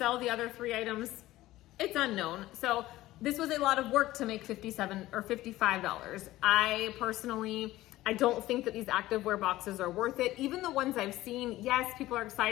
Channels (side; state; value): right; quieter; 16.4 dB